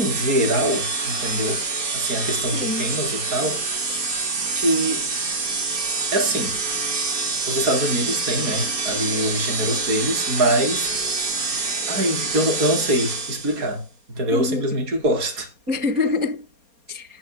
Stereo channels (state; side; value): late; left; 4.3 ms